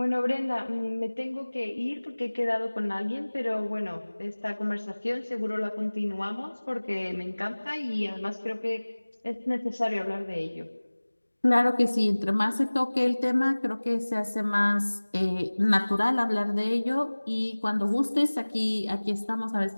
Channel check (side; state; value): both; inverted; correlation -1.00